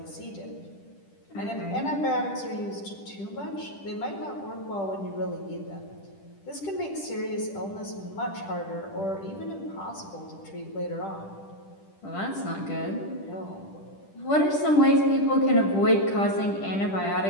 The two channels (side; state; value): right; late; 10 ms